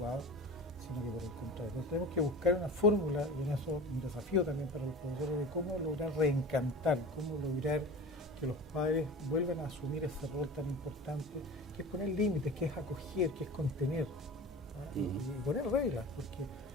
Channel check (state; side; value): normal; both; correlation 0.35